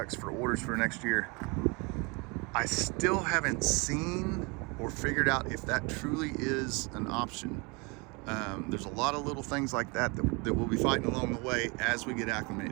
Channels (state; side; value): quieter; left; 29.3 dB